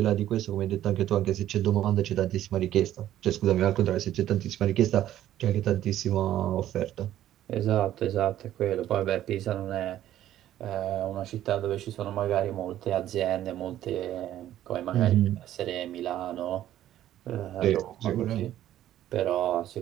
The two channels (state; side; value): quieter; left; 12.5 dB